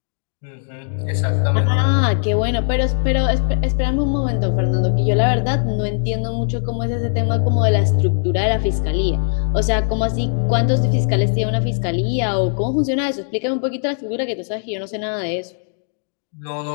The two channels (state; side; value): silent; right; digital silence